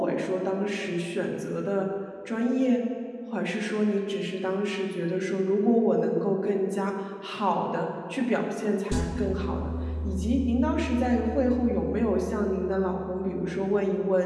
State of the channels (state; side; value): identical; both; correlation 1.00